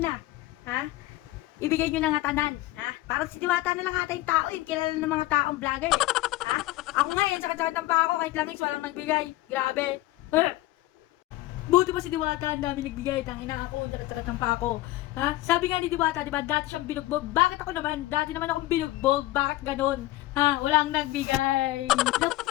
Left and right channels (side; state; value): right; quieter; 17.5 dB